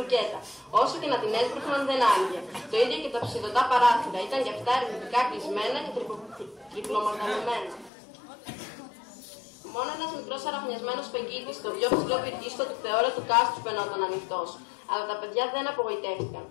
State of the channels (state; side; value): drops out; right; at 7.9 s